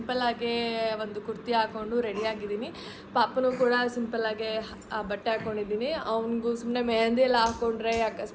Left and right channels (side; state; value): both; identical; correlation 1.00